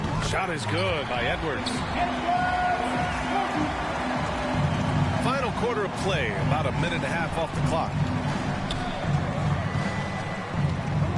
Shot is good by Edwards. Final quarter of play, about a minute and a half off the clock.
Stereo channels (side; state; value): both; identical; correlation 1.00